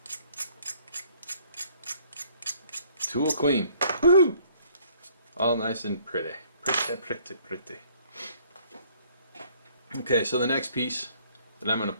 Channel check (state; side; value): inverted; both; correlation -0.60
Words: tool clean. Woohoo! All nice and pretty. Pretty. Okay, so the next piece that I'm going to